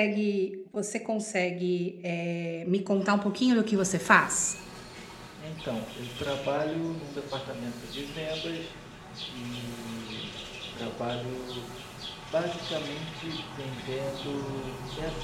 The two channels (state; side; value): identical; both; correlation 1.00